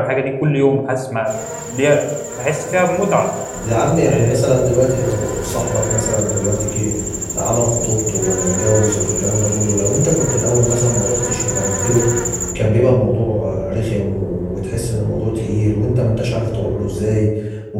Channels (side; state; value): both; identical; correlation 1.00